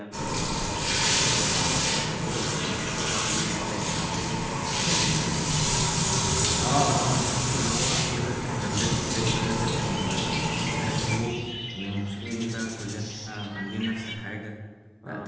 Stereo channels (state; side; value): identical; both; correlation 1.00